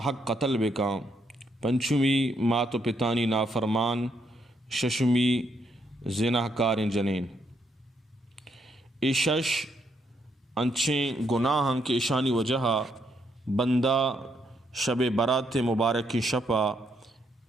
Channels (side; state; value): both; normal; correlation 0.75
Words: قتل بکا پنچمی مات و پتانی نافرمان ششمی زناہ کار جنین شش انچیں گناہاں کے اشانی وجہ بندہ شب برات مبارک کی شپا